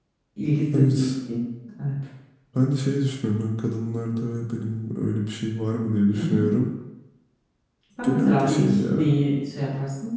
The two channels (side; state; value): both; identical; correlation 1.00